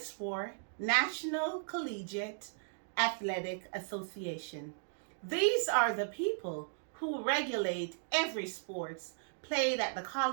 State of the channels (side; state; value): left; silent; digital silence